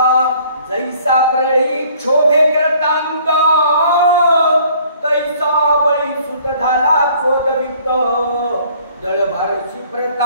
जैसा प्रळी क्षोभे करतांत तैसा बळी सुत झाला क्रोधविक्त. दळभारशी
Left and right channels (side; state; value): both; inverted; correlation -0.57